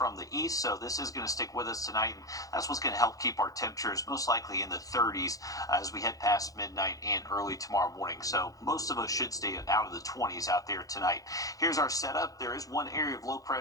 the east, so this is going to stick with us tonight, and that's what's going to help keep our temperatures most likely in the 30s as we head past midnight and early tomorrow morning. So most of us should stay out of the 20s out there tonight. Here's our setup. There is one area of low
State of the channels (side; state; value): right; late; 0.17 ms